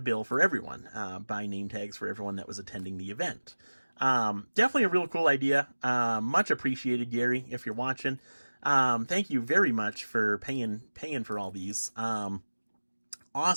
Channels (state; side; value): inverted; both; correlation -1.00